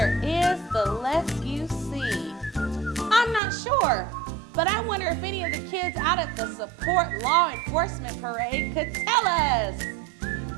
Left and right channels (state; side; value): drops out; left; at 3.4 s